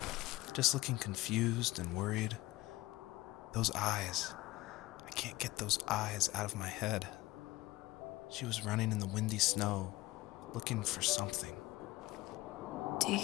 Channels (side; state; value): right; quieter; 18.8 dB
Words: just looking confused and worried. Those eyes. I can't get those eyes out of my head. She was running in the windy snow, looking for something. Do